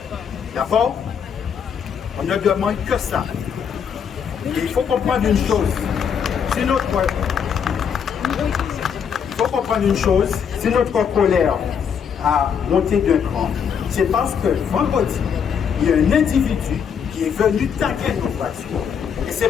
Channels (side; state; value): right; quieter; 7.3 dB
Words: D'abord, on ne demande que ça. Et il faut comprendre une chose. Si notre colère a monté d'un cran, c'est parce que vendredi, il y a un individu qui est venu taguer nos voitures. Et